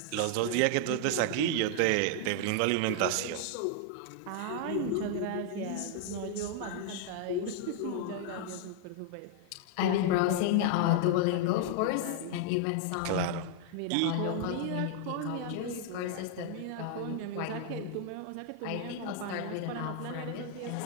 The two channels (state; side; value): different; both; correlation 0.00